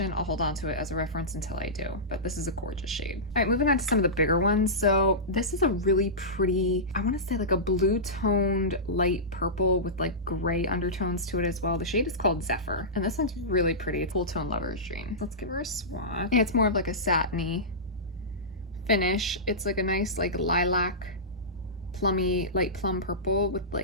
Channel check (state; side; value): normal; both; correlation -0.16